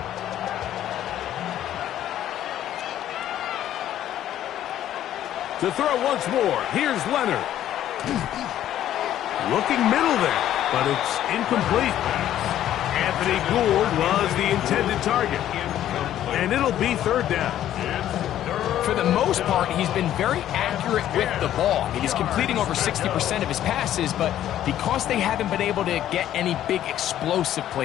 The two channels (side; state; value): right; quieter; 11.9 dB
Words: To throw once more, here's Leonard. Looking middle there, but it's incomplete. Anthony Gould was the intended target. And it'll be third down. For the most part, he's been very accurate with the ball. I mean, he's completing over 60% of his passes, but because they haven't been able to get any big explosive